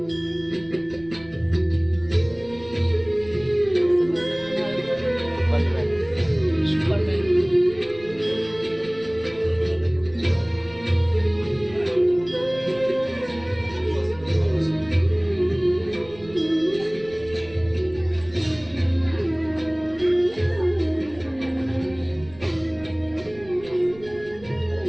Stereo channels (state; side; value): noise; right; rumble, 22 dB below the sound